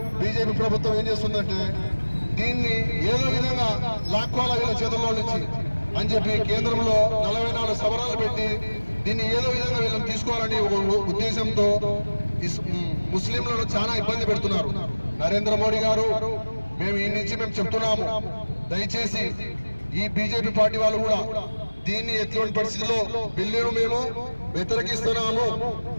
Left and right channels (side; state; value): both; inverted; correlation -1.00